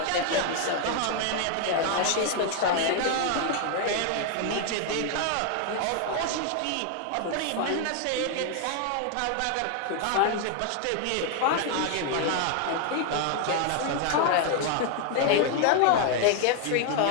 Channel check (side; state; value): both; different; correlation 0.00